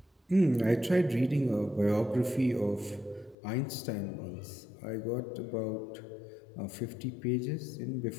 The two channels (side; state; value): right; drops out; at 3.4 s